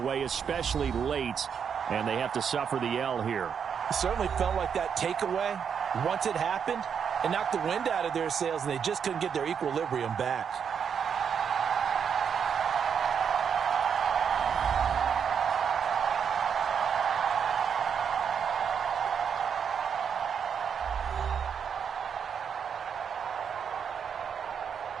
especially late, and they have to suffer the L here. It certainly felt like that takeaway, once it happened, it knocked the wind out of their sails, and they just couldn't get their equilibrium back.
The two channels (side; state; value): left; quieter; 7.2 dB